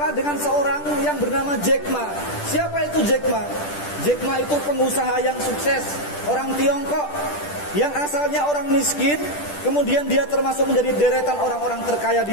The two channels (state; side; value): late; right; 10 ms